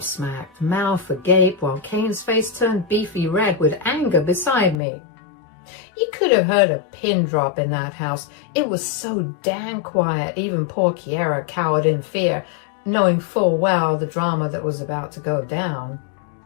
mouth agape, while Kane's face turned beefy red with anger beside me. You could have heard a pin drop in that house. It was so damn quiet, even poor Kiera cowered in fear. knowing full well the drama that was about to go down.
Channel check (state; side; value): drops out; right; at 4.8 s